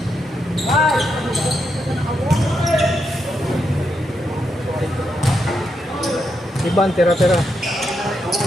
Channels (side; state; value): both; normal; correlation 0.82